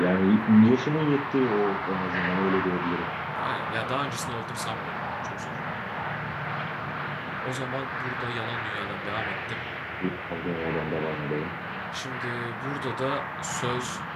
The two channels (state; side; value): identical; both; correlation 1.00